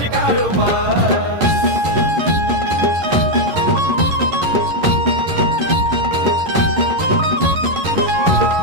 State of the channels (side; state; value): left; late; 11 ms